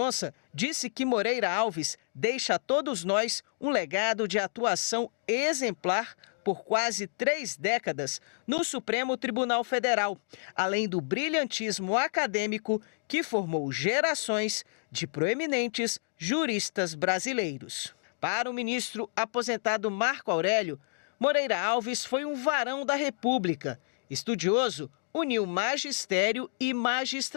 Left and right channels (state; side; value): silent; right; digital silence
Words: disse que Moreira Alves deixa a todos nós um legado de atuação exemplar por quase 3 décadas no Supremo Tribunal Federal, além do brilhantismo acadêmico que formou gerações de proeminentes juristas brasileiros. Para o ministro aposentado Marco Aurélio, Moreira Alves foi um varão da República. Estudioso, uniu magistério e